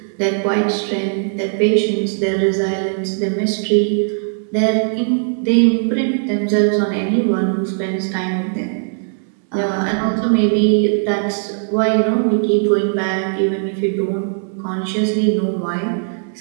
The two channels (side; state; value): left; silent; digital silence